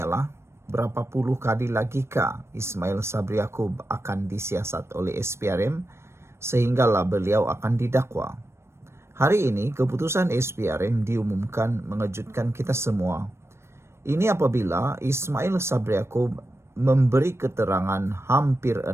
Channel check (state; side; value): late; left; 0.13 ms